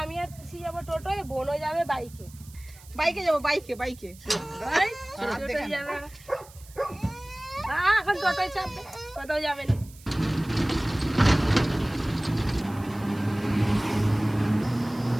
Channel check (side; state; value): right; noise; hiss, 22 dB below the sound